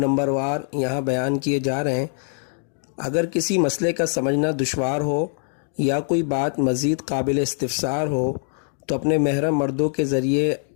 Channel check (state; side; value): silent; right; 58 dB below the other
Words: वार यहाँ बयान किए जा रहे हैं। अगर किसी मसले का समझना दुश्वार हो या कोई बात मज़ीद काबिल इस्तिफ़सार हो तो अपने महरम मर्दों के ज़रिए